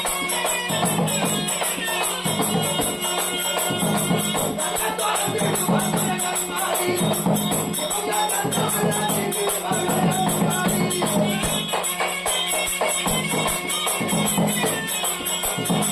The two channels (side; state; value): left; noise; hum, 29 dB below the sound